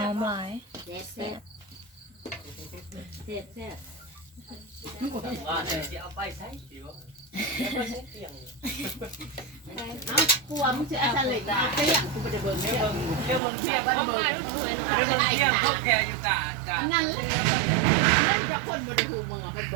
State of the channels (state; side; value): drops out; left; at 13.4 s